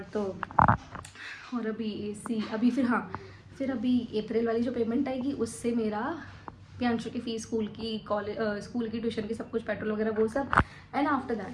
अभी AC अभी फिर अभी अप्रैल वाली जो पेमेंट आएगी उससे मेरा प्रियांशु की फ़ीस, स्कूल की, कॉलेज, स्कूल की, ट्यूशन की, सब कुछ, पेट्रोल वगैरह वो सब। एंड आफ्टर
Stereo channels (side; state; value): both; identical; correlation 1.00